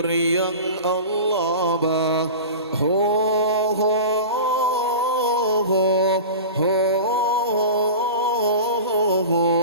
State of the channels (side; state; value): both; inverted; correlation -0.32